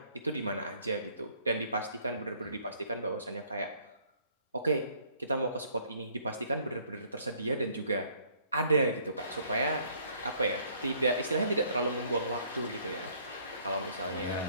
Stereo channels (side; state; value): both; inverted; correlation -0.62